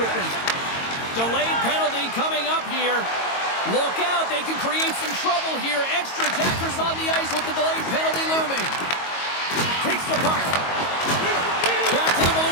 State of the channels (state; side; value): late; right; 22 ms